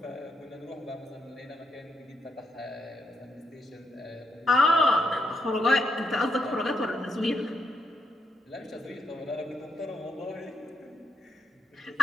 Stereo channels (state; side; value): normal; both; correlation 0.79